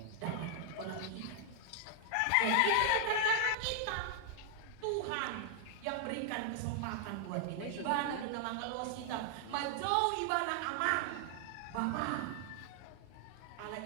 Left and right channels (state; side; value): different; both; correlation 0.00